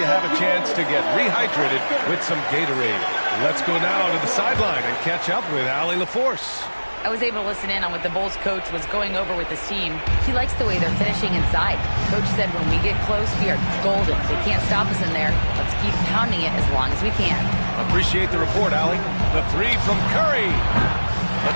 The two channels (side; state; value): both; inverted; correlation -1.00